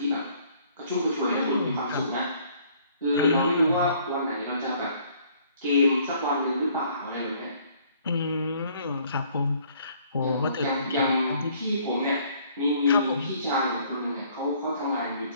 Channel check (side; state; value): both; inverted; correlation -0.60